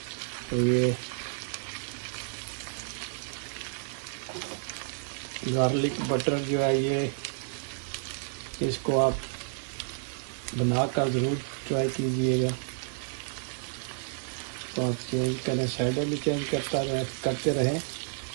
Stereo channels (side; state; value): left; silent; digital silence